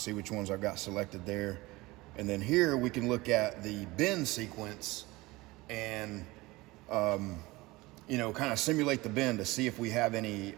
which ones I've got selected there. And then here we can look at the bend sequence and, you know, kind of simulate the bend to see if we have any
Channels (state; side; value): quieter; left; 21.1 dB